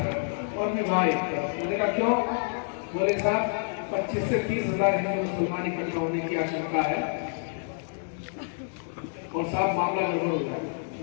और विवाह एक तरफ। मैंने कहा क्यों? बोले साहब 25 से 30 हजार हिंदू मुसलमान इकट्ठा होने की आशंका है और साहब मामला गड़बड़ हो जाएगा।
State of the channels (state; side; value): silent; right; digital silence